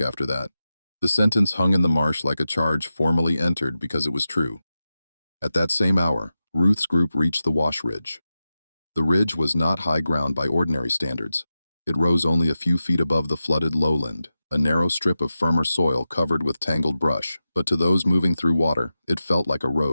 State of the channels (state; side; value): inverted; both; correlation -0.92